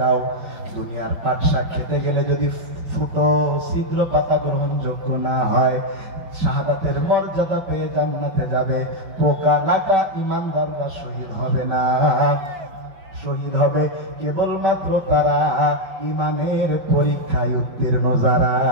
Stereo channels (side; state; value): left; late; 5.6 ms